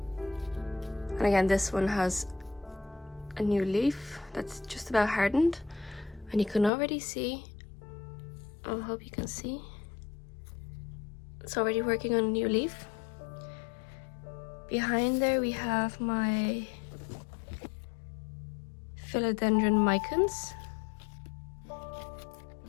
And again, this one has a new leaf that's just about hardened, and you can already see, I hope you can see, it's already working on a new leaf. Behind there we have my philodendron micans.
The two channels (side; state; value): right; drops out; at 6.7 s